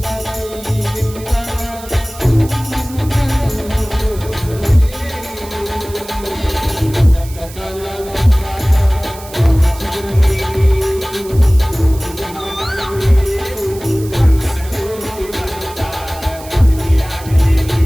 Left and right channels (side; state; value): right; noise; hiss, 17 dB below the sound